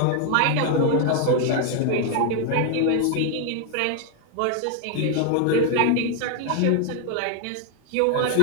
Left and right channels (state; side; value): different; both; correlation 0.00